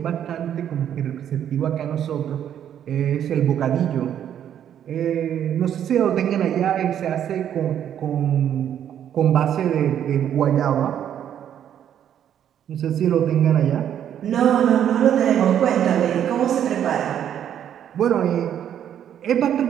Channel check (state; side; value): quieter; left; 9.8 dB